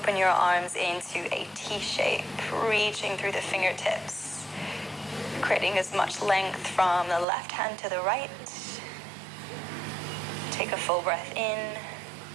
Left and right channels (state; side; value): drops out; left; at 7.2 s